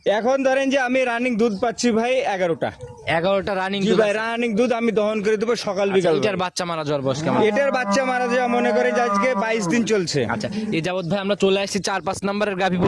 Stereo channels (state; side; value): identical; both; correlation 1.00